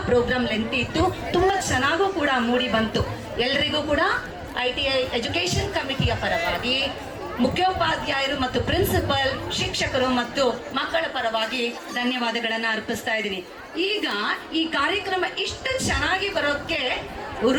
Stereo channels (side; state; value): both; identical; correlation 1.00